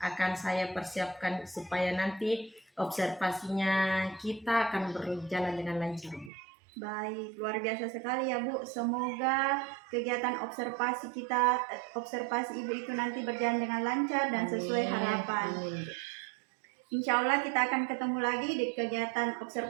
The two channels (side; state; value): left; drops out; at 6.3 s